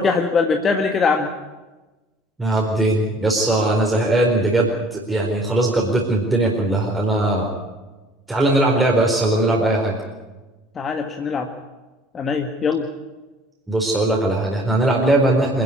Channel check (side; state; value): both; normal; correlation 0.53